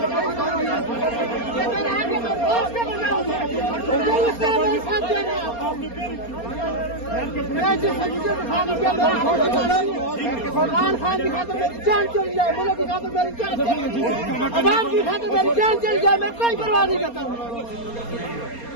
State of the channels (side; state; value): right; late; 4.3 ms